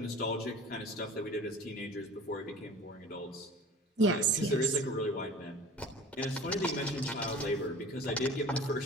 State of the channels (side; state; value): both; normal; correlation 0.41